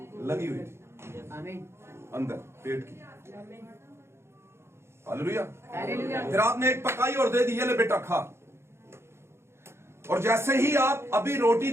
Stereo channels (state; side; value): late; left; 0.12 ms